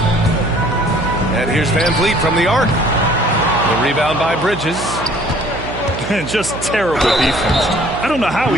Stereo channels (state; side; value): noise; right; hum, 9 dB below the sound